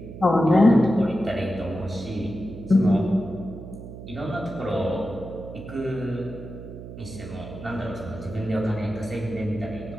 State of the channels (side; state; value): right; noise; hum, 12 dB below the sound